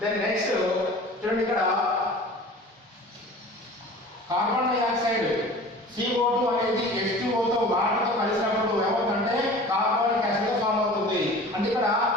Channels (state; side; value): normal; both; correlation 0.41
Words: దెన్ నెక్స్ట్ చూడండి, ఇక్కడ కార్బన్ డైఆక్సైడ్ CO2 అనేది H2O తో వాటర్తో కలిసినప్పుడు ఏమవుతుందంటే కార్బనిక్ యాసిడ్ గా ఫామ్ అవుతుంది. అంటే ఇక్కడ